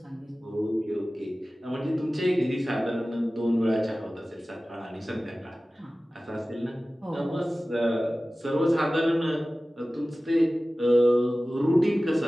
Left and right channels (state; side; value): normal; both; correlation 0.97